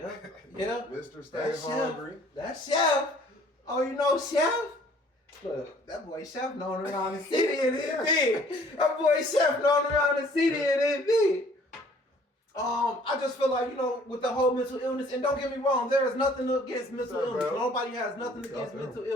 Mr. Stay Hungry. That's Chef. Oh, you know Chef? Look, that boy Chef known around the city and it big. That boy Chef known around the city and it big. I just feel like, you know, with the whole mental illness, and don't get me wrong, there is nothing against mental illness. Bro? Nobody has nothing against mental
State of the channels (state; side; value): normal; both; correlation 0.56